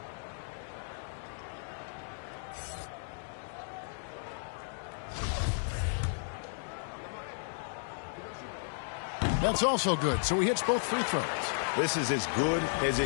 That's also good, so he hits both free throws. This is as good as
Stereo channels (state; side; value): silent; right; digital silence